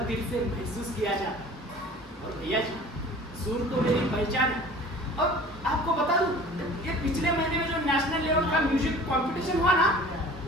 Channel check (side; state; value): both; normal; correlation 0.44